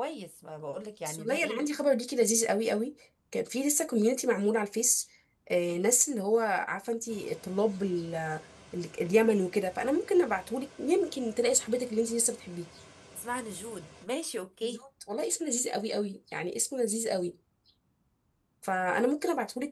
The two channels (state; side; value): identical; both; correlation 1.00